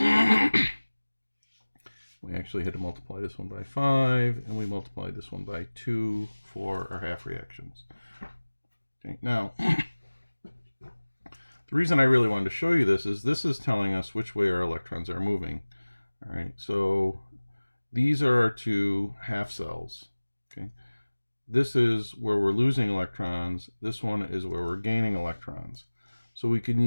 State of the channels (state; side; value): inverted; both; correlation -1.00